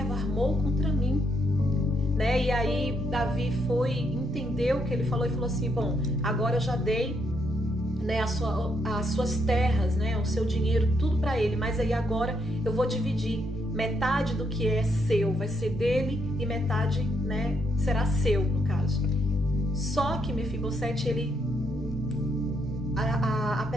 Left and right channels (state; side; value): normal; both; correlation 0.76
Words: armou contra mim. Né? E aí Davi entendeu o que ele falou e falou assim: bom, agora eu já dei, né, as suas terras, né, o seu dinheiro, tudo para ele, mas aí agora eu vou dividir. Metade do que é seu vai ser dele e metade, né, será seu, no caso. Só que Mefibosete, ele,